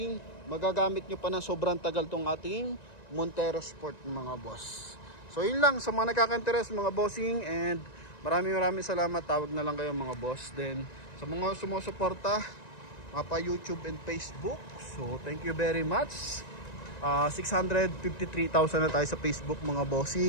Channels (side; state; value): right; late; 1.9 ms